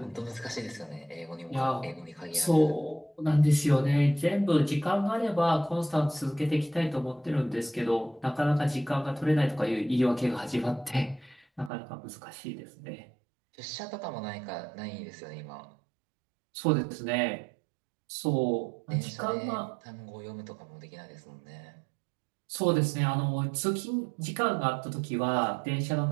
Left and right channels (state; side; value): drops out; left; at 11.7 s